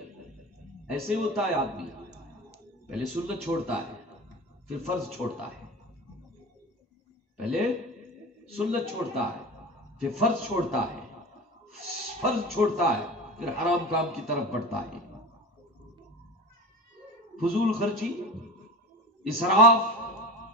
ایسے ہوتا ہے آدمی، پہلے سنت چھوڑتا ہے پھر فرض چھوڑتا ہے، پہلے سنت چھوڑتا ہے پھر فرض چھوڑتا ہے، فرض چھوڑتا ہے پھر حرام کام کی طرف بڑھتا ہے. فضول خرچی، اسراف،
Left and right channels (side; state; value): both; normal; correlation 0.30